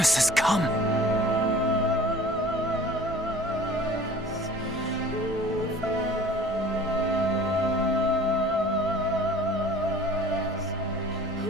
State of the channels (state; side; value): normal; both; correlation 0.46